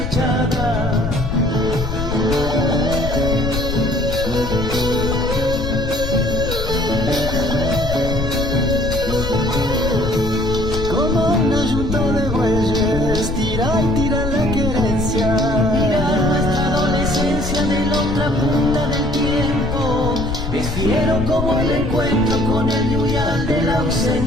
Como un ayunto de bueyes, tira y tira la querencia, mirar nuestra adolescencia de la otra punta del tiempo. Es fiero como el encuentro con el yuyal de la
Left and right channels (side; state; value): left; noise; rumble, 4 dB below the sound